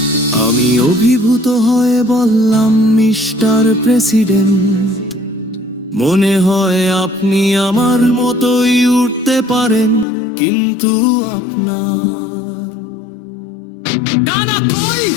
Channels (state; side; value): drops out; right; at 10.1 s